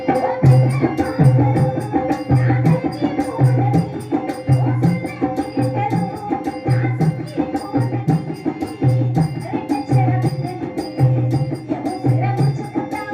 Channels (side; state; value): both; identical; correlation 1.00